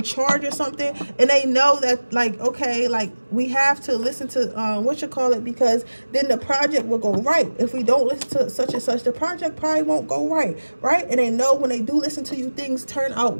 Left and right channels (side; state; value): both; inverted; correlation -1.00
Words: charge or something, and they know that, like, okay, like, we have to listen to because then the project will go right. If we don't listen to such and such, the project probably won't go right. And they know when they do listen to you, things turn out